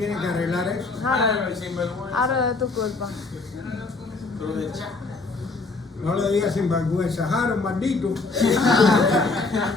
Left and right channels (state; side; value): quieter; right; 3.8 dB